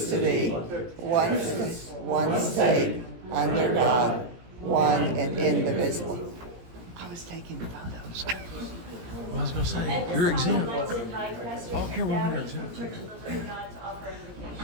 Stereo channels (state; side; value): late; left; 17 ms